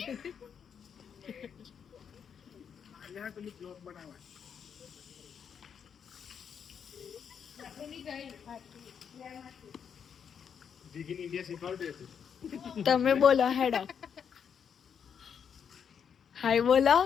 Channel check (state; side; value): quieter; right; 7.4 dB